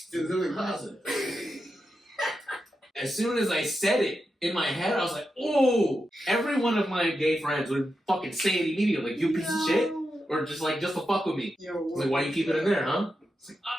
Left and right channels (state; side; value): normal; both; correlation 0.88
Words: in the closet. As soon as I said it in my head, I was like, oh! Every one of my gay friends would fucking say it immediately, like, you piece of shit? Or just to fuck with me. Like, why you keep it in there, huh? It's like,